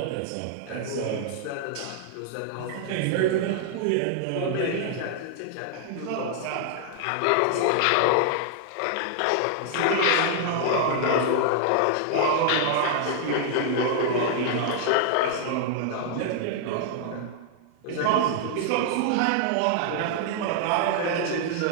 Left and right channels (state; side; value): different; both; correlation -0.01